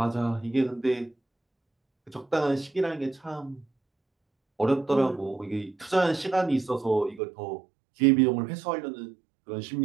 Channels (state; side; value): drops out; left; at 7.2 s